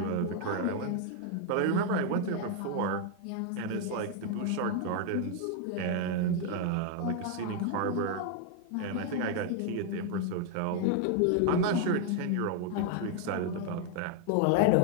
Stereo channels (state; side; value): different; both; correlation 0.00